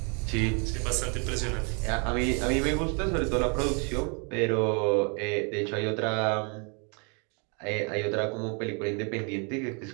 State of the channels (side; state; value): left; quieter; 36.2 dB